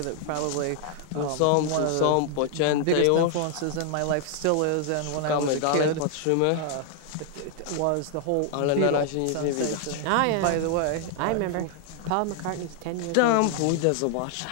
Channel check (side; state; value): both; different; correlation 0.00